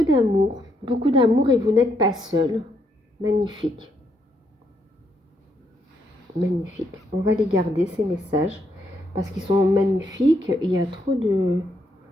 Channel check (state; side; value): normal; both; correlation 0.76